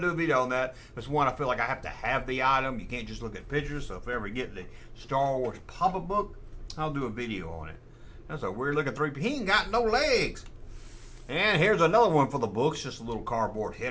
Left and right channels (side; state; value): both; identical; correlation 1.00